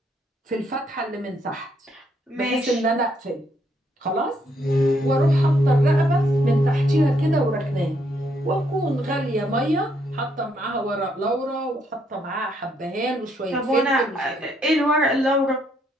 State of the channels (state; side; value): normal; both; correlation 0.72